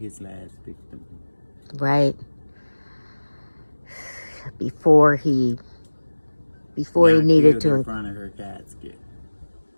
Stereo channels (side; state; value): both; inverted; correlation -1.00